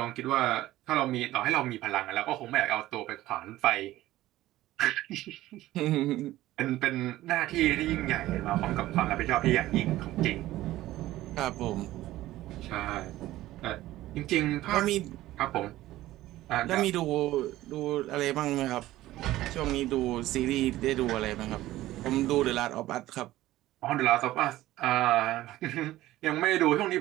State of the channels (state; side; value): quieter; left; 15.7 dB